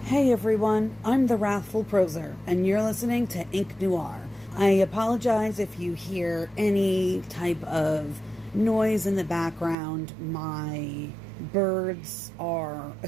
Hey everyone, I'm the Wrathful Proser, and you're listening to Ink Noir. I apologize if you hear any type of noise in the background. My birds are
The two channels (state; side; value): drops out; left; at 9.8 s